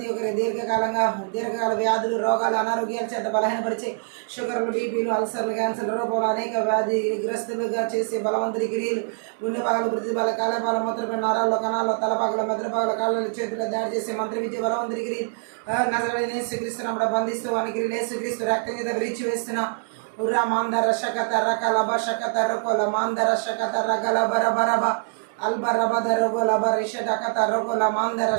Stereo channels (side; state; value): left; silent; digital silence